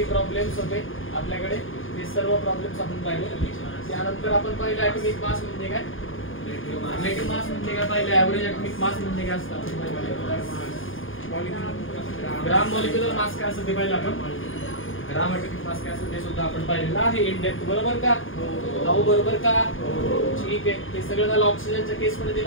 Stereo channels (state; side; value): late; right; 0.58 ms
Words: प्रॉब्लेम्स होते आपल्याकडे, ते सर्व प्रॉब्लेम्स आपण पाहिले. त्यानंतर आपण पाहिलं ॲटॉमिक मास म्हणजे काय, रिलेटिव्ह मास म्हणजे काय पाहिलं, ॲव्हरेज ॲटॉमिक मास म्हणजे काय असतं, ग्राम मॉलिक्युलर मास काय असतं ते पाहिलं आपण, ग्राम ॲटॉमिक मास काय असतं ते सुद्धा आपण पाहिलेलं आहे इन डेप्थ, बरोबर का? भाऊ बरोबर का? ठीक आहे. ते सगळं झालं. ऑक्सिजनच्या केस मध्ये